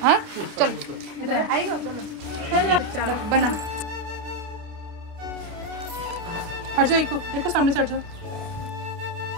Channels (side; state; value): left; late; 28 ms